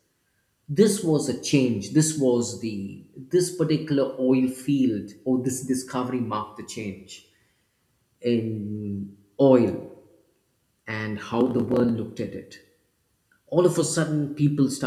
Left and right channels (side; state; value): both; identical; correlation 1.00